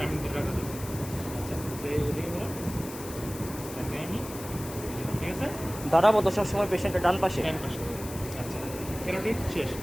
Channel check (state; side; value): noise; left; hiss, 13 dB below the sound